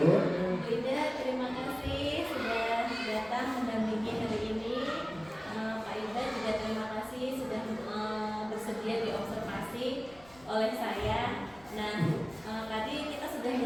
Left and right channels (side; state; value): left; noise; rumble, 25 dB below the sound